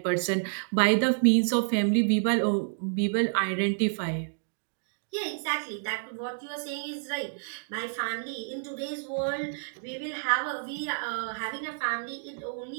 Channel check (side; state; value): left; silent; digital silence